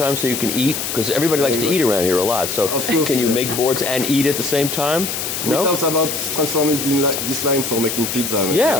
so you can eat? Because everybody likes to eat around here a lot. So Of course, can you yeah. make boards and eat at the same time? We No. talked about transforming this line for making pizza.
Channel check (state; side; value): noise; left; hiss, 4 dB below the sound